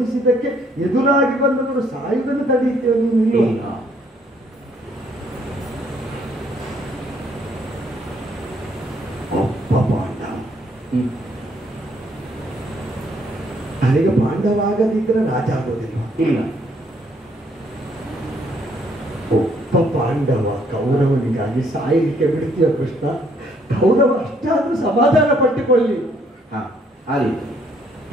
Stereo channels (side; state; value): both; normal; correlation 0.67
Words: ಎದುರಾಗಿ ಬಂದವರು ಸಾಯುವುದನ್ನು ತಡೆಯುತ್ತೇವೆ ನೀನು. ಒಬ್ಬ ಪಾಂಡವ ನನಗೆ ಪಾಂಡವಾಗದಿದ್ರೆ ರಾಜ ಆಗೋದಿಲ್ಲ. ಇಲ್ಲ, ಒಬ್ಬ ಪಾಂಡವ ಕೌರವನಿಗಾಗಿ ಸಾಯಲಿಕ್ಕೆ ಬಿಡ್ತೀಯ ಕೃಷ್ಣ? ಕೌರವ ಅಷ್ಟಾದ್ರೂ ಸಮಾಧಾನ ಪಟ್ಟುಕೊಳ್ಳಿ.